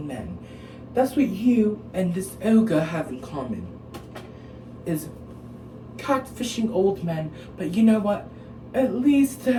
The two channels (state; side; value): identical; both; correlation 1.00